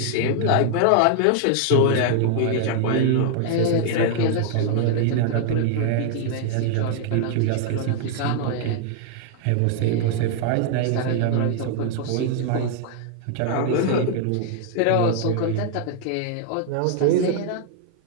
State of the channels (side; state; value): both; different; correlation 0.00